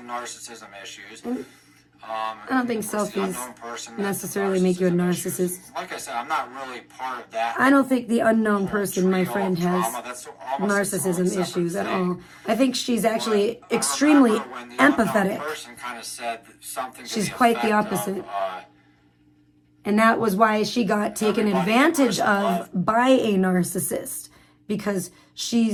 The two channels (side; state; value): both; identical; correlation 1.00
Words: narcissism issues. I don't think of course, the selfies unknown person has necessarily make you a narcissism issues. narcissist. Like I said, I'm not really part of that. I don't think the unknown person, my trio friend, of has drama. That's almost its own narcissism separate issues at thing. all. I think she's actually But I extremely remember when the unknown empathetic. person kind of said something to She's the quite the effect opposite. of, And that was why she got taken Everybody advantage in person of by a narcissist, because